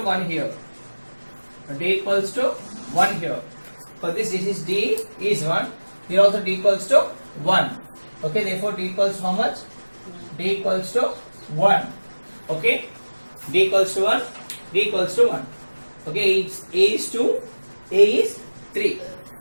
1 here. D equals to 1 here. For this is D is 1. Here also D equals to 1. Okay, therefore D equals to how much? D equals to 1. Okay, D equals to 1. D equals to 1. Okay, A is 2, A is 3.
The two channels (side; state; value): both; inverted; correlation -1.00